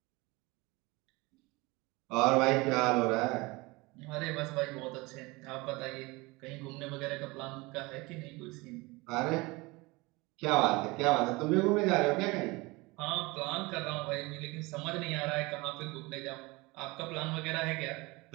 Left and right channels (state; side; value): quieter; left; 23.8 dB